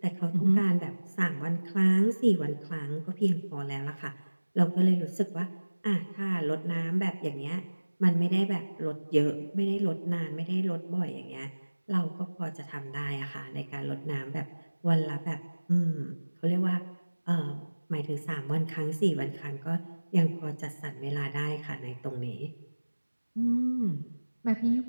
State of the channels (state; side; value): inverted; both; correlation -1.00